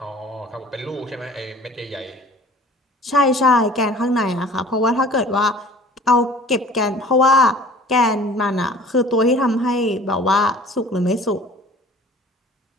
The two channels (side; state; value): both; normal; correlation 0.47